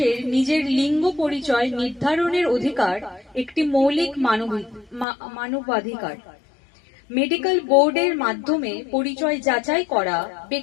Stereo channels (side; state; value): right; drops out; at 5.1 s